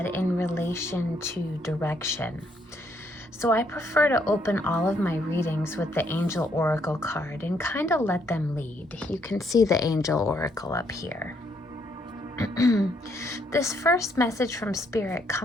in relation to direction. So I prefer to open all of my readings with the Angel Oracle card and kind of let them lead. You can see the Angel Oracle up here. This first message from Spirit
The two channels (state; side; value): normal; both; correlation 0.72